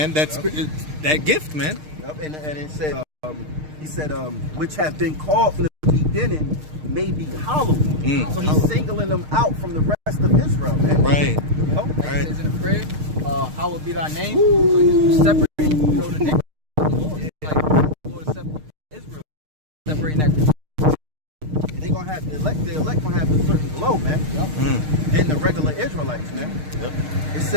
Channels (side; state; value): left; late; 6.5 ms